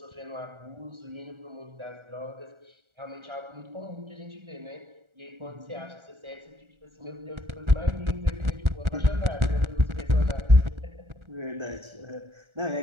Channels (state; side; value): late; left; 1.4 ms